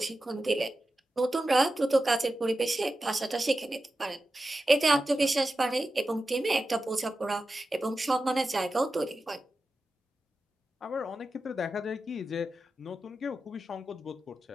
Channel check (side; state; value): both; normal; correlation 0.92